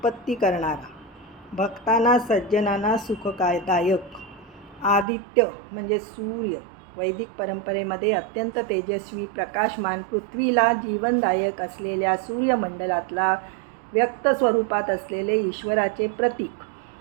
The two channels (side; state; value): left; drops out; at 5.1 s